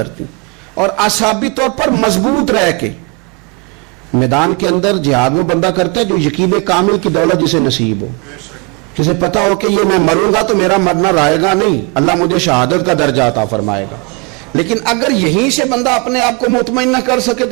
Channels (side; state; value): left; quieter; 28.8 dB